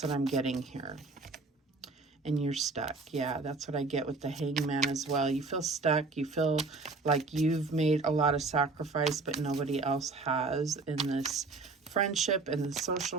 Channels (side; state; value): left; quieter; 3.8 dB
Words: what I'm getting here. and you're stuck. Yeah, that's what I get with the Hangman as well. You feel stuck. You feel like you've made a lot of sacrifice, but nobody else has in this friendship, in the